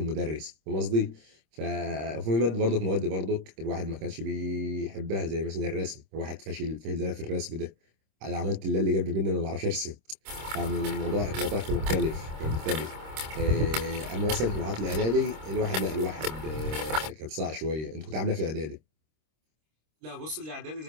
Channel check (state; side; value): late; left; 26 ms